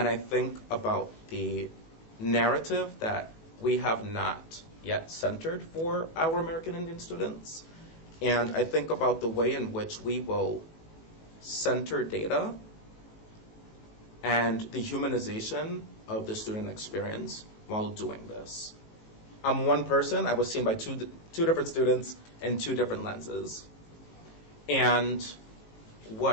I think about the narrative that we have not yet centered for our American Indian students. And I think about the way in which we will center data and the humanization of the student experience while doing this. I'm one person. I was seen by two different students in two different lenses. And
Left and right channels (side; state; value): right; late; 18 ms